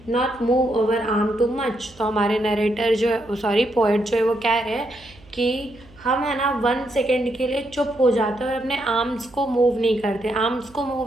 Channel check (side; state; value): right; noise; hum, 25 dB below the sound